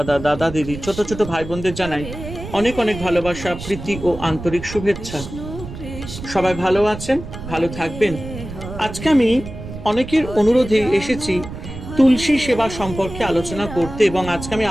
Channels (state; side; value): noise; right; rumble, 11 dB below the sound